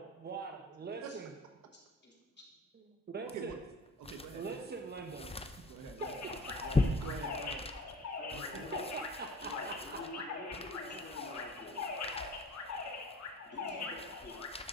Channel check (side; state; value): both; normal; correlation 0.44